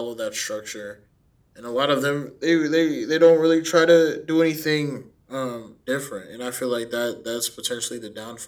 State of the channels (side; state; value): both; identical; correlation 1.00